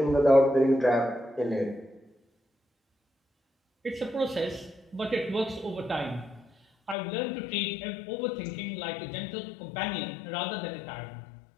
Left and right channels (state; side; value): drops out; right; at 7.0 s